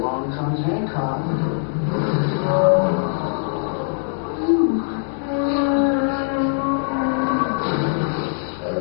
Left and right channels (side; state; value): right; silent; 63 dB below the other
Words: comes Hancock. I